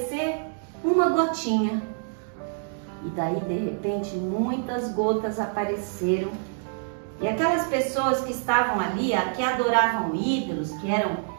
uma gotinha. E daí de repente muitas gotas apareceram E aquelas pessoas que estavam ali, que adoravam ídolos, que eram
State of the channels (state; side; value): silent; left; digital silence